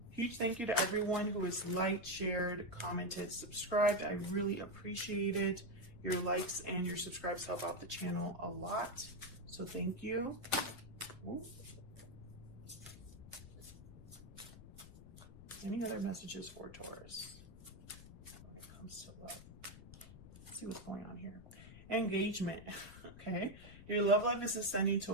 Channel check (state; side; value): noise; left; rumble, 16 dB below the sound